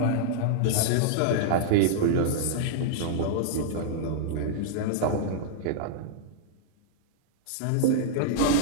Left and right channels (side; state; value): both; different; correlation -0.01